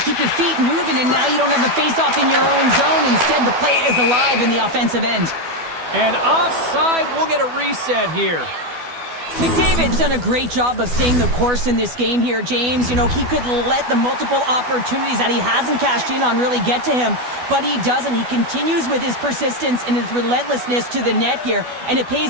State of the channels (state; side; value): late; left; 12 ms